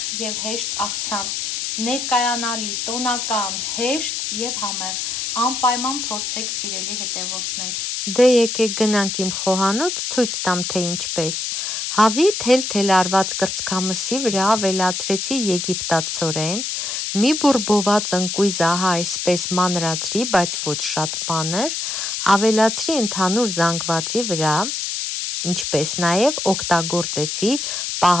և հեշտ աղցան, ներկայանալի, տոնական, հեշտ և համեղ, անպայման փորձեք սիրելի հետևորդներ։ Դե եկեք գնանք իմ խոհանոց ցույց տամ թե ինչպես։ Հավի թել-թել արված կրծքամսի վրա ավելացրեցի եգիպտացորեն, մի բուրբոված ընկույզ ահա այսպես մանրացրի, բայց ոչ շատ մանր, ավելացրի ընդհանուր զանգվածի վրա, ինչպես նաև օգտագործեցի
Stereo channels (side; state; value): left; noise; hiss, 3 dB below the sound